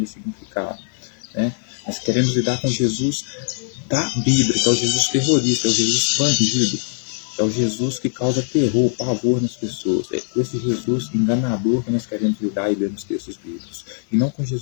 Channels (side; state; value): right; silent; 65 dB below the other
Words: ressignificada, né? Nós queremos lidar com Jesus da Bíblia, que é o Jesus terrorista, é o Jesus expandido, é o Jesus que causa terror, pavor nas pessoas. É com esse Jesus enganador que nós queremos lidar e ler nos textos bíblicos. E não com